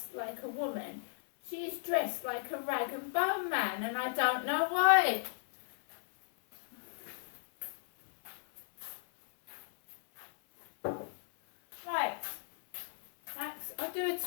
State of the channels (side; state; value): right; silent; 54 dB below the other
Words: like a woman. She is dressed like a rag and bone man, and I don't know why. Right, Max, I'll do a